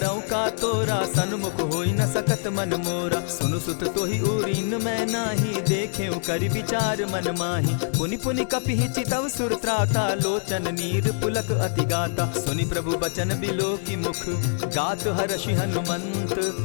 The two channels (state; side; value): silent; right; digital silence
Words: का तोरा, सन्मुख होई न सकत मन मोरा। सुनु सुत तोहि उरीन मैं नाही, देखे करि विचार मन माही। पुनि पुनि कपिहि चितव सुर त्राता, लोचन नीर पुलक अति गाता। सुनि प्रभु बचन बिलो की मुख, गात हर्षि हनुमंत।